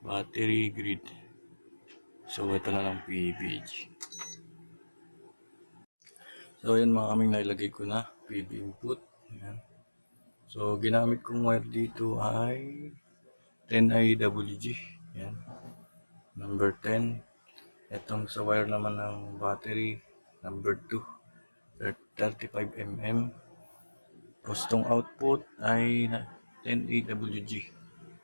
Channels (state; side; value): inverted; both; correlation -1.00